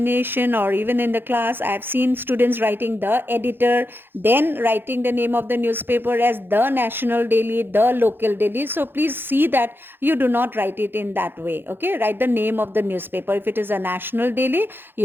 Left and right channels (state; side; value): late; left; 0.10 ms